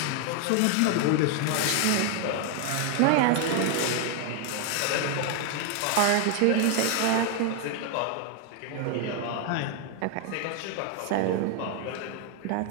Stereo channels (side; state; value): both; different; correlation 0.00